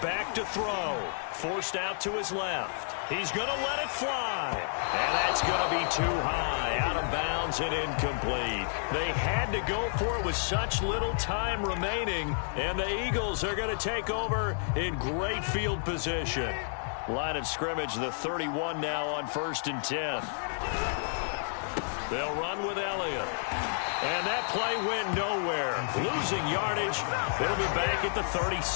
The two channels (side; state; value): right; silent; digital silence